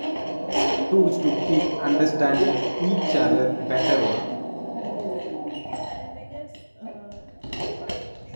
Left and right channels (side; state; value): both; inverted; correlation -1.00